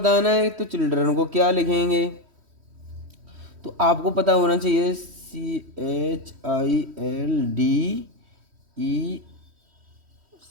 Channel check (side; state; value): left; late; 3.1 ms